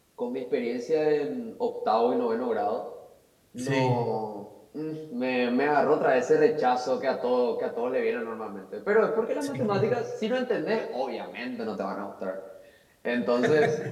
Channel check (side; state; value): both; identical; correlation 1.00